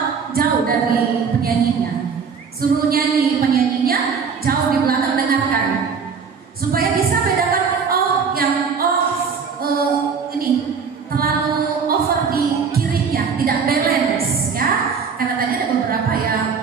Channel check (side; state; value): left; quieter; 5.9 dB